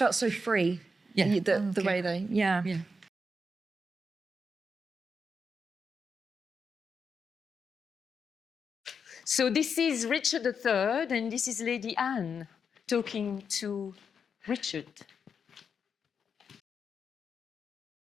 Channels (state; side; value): normal; both; correlation 0.84